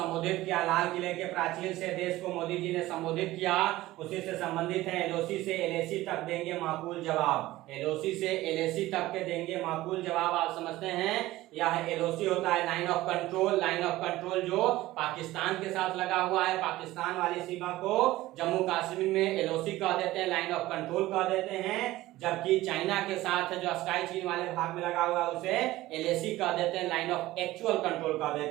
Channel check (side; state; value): left; quieter; 17.0 dB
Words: किया, लाल किले के प्राचीर से देश को मोदी जी ने संबोधित किया। उसी से संबंधित है एलओसी से एलएसी तक देंगे माकूल जवाब। एलओसी से एलएसी तक के देंगे माकूल जवाब। आप समझते हैं यह एलओसी होता है line of control. Line of control जो पाकिस्तान के साथ लगा हुआ है, पाकिस्तान वाली सीमा को जम्मू कश्मीर में एलओसी कह देते हैं, लाइन ऑफ कंट्रोल कह देते हैं। जबकि चाइना के साथ जो स्काई चीन वाले भाग में लगा हुआ है उसे एलएसी कह देते हैं, लाइन ऑफ एक्चुअल कंट्रोल कह